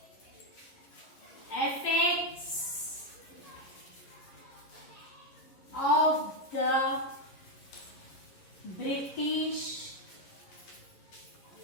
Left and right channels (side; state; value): right; late; 11 ms